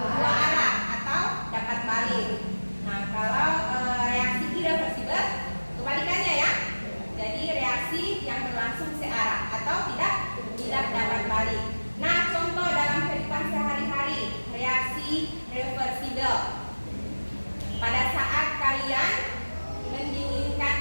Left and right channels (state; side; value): inverted; both; correlation -1.00